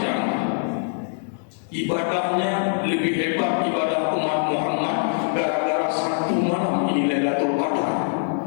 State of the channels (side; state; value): right; silent; digital silence